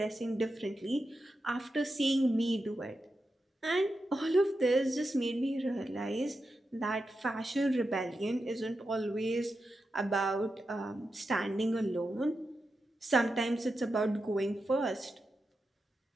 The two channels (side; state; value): both; normal; correlation 0.89